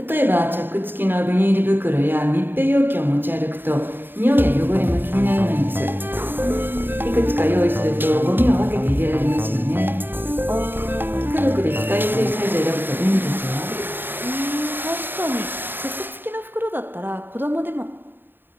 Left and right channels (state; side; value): late; left; 0.096 ms